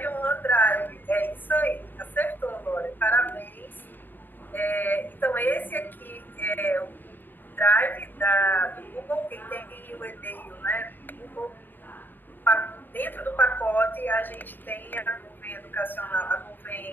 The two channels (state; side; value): late; right; 0.092 ms